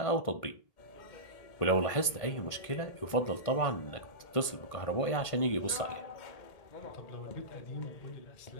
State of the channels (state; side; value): late; right; 1.5 ms